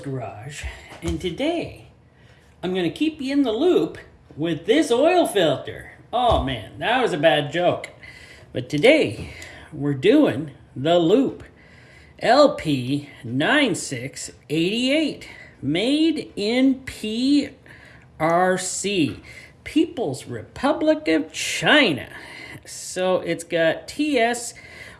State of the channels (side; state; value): both; identical; correlation 1.00